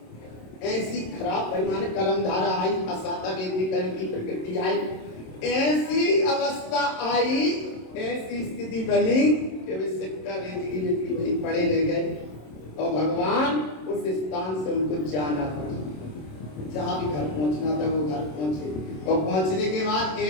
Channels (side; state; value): right; late; 27 ms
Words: ऐसी खराब भाई माने कर्म धारा आई, असाता वेदी कर्म की प्रकृति आई, ऐसी अवस्था आई, ऐसी स्थिति बनी कि वे सिक्का रेजगी बनी पड़े ले गए। और भगवान उस स्थान से उनको जाना पड़ा, जहां भी घर पहुंचना था वो घर पहुंचे, और पहुंचने के बाद